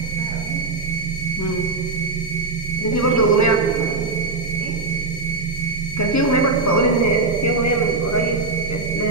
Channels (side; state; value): left; quieter; 3.4 dB